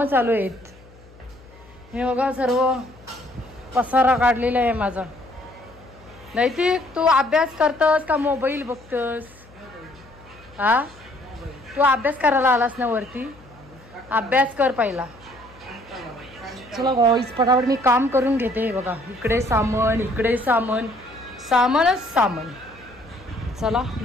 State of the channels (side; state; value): left; noise; hum, 24 dB below the sound